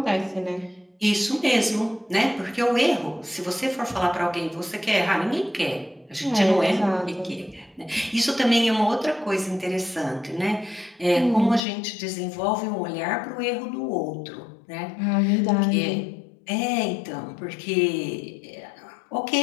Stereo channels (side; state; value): right; drops out; at 11.6 s